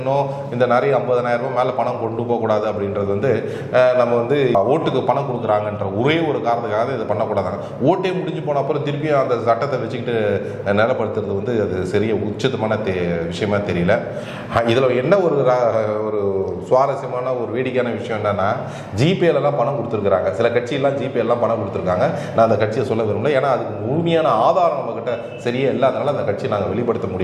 இந்த நிறைய 50,000 ரூபாய் மேலே பணம் கொண்டு போகக்கூடாது அப்படின்றது வந்து நம்ம வந்து ஓட்டுக்கு பணம் கொடுக்குறாங்கன்ற ஒரே ஒரு காரணத்துக்காக இதை பண்ணக்கூடாதாங்க. ஓட்டே முடிஞ்சு போன அப்புறம் திருப்பியும் அந்த சட்டத்தை வச்சுக்கிட்டு நிலப்படுத்துறது வந்து அது சரிய உச்சிதமான விஷயமா தெரியல. இதில் என்ன ஒரு சுவாரஸ்யமான ஒரு வேடிக்கையான விஷயம் என்னன்னா, ஜிபேலாம் பணம் கொடுத்துருக்காங்க. சில கட்சியெல்லாம் ஜிபேலாம் பணம் கொடுத்துருக்காங்க. நான் அந்த கட்சியை சொல்ல விரும்பல. ஏன்னா அதுக்கு முழுமையான ஆதாரம் நம்மக்கிட்ட சரியே இல்லாதனால அந்த கட்சியை நாங்கள் வெளிப்படுத்த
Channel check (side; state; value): both; identical; correlation 1.00